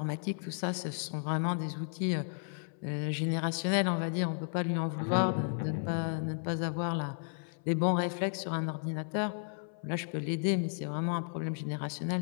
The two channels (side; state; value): right; silent; 55 dB below the other